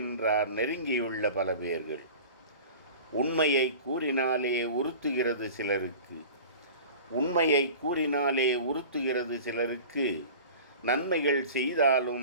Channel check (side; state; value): both; inverted; correlation -0.38